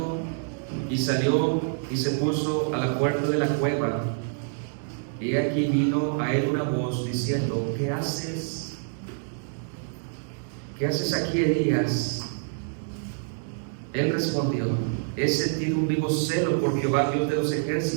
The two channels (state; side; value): silent; left; digital silence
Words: y salió y se puso a la puerta de la cueva. Y aquí vino a él una voz diciendo: ¿qué haces? ¿Qué haces aquí, Elías? Él respondió: he sentido un vivo celo por Jehová, Dios de los